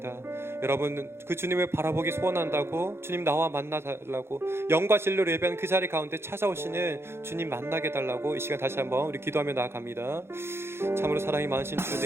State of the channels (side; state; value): left; late; 0.12 ms